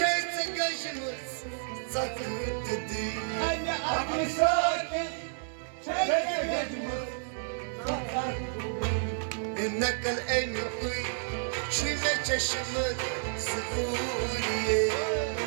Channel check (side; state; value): left; silent; 57 dB below the other